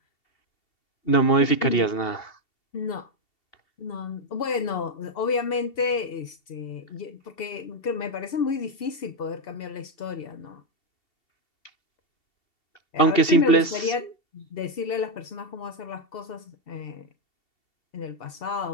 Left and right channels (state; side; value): late; right; 2.7 ms